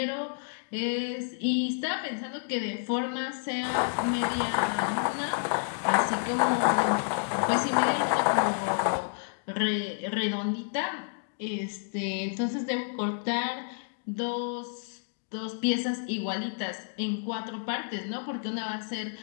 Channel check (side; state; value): right; silent; digital silence